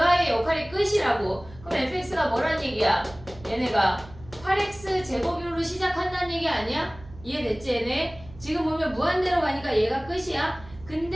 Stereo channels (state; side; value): noise; right; hum, 19 dB below the sound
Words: 아이의 역할이 끝이라고. 그럼 fx가 뭐란 얘기야? 얘네가 8x 제곱으로 시작한다는 얘기 아니야? 이해됐지 얘네? 지금 보면 무한대로 가니까 얘가 끝이야.